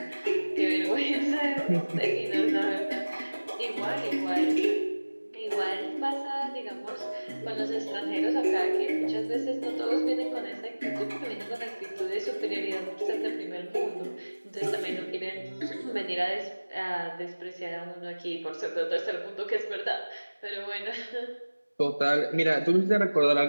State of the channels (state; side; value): inverted; both; correlation -1.00